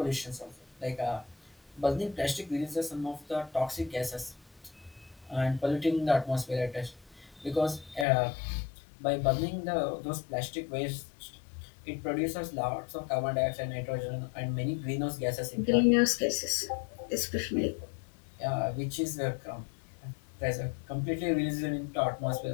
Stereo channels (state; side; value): drops out; right; at 8.1 s